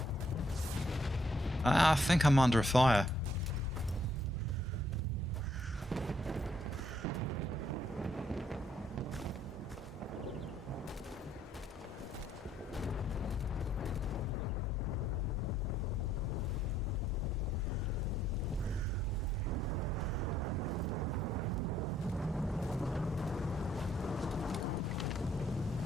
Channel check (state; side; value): normal; both; correlation 0.69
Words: I think I'm under fire.